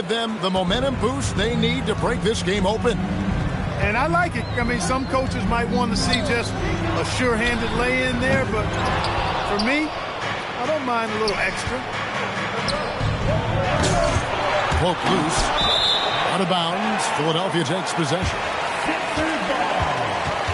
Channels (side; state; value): both; identical; correlation 1.00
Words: them the momentum boost they need to break this game open. And I like it. I mean, some coaches might want to see just a sure-handed lay-in there, but for me, I don't mind a little extra. Poke loose. Out of bounds. Philadelphia takes possession.